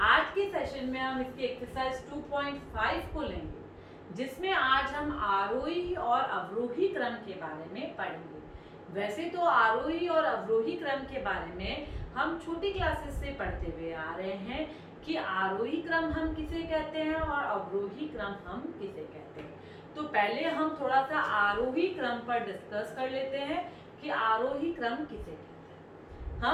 आज के सेशन में हम इसकी एक्सरसाइज 2.5 को लेंगे, जिसमें आज हम आरोही और अवरोही क्रम के बारे में पढ़ेंगे। वैसे तो आरोही और अवरोही क्रम के बारे में हम छोटी क्लासेस से पढ़ते हुए आ रहे हैं कि आरोही क्रम हम किसे कहते हैं और अवरोही क्रम हम किसे कहते हैं। तो पहले हम थोड़ा सा आरोही क्रम पर डिस्कस कर लेते हैं कि आरोही क्रम किसे कहते हैं।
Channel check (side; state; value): both; identical; correlation 1.00